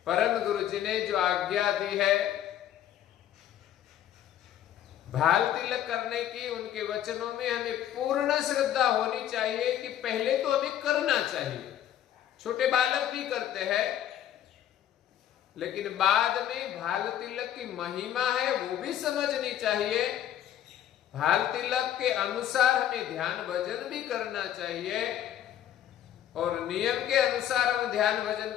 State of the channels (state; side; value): quieter; right; 11.1 dB